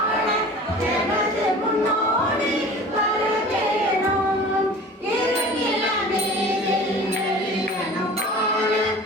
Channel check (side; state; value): both; normal; correlation 0.41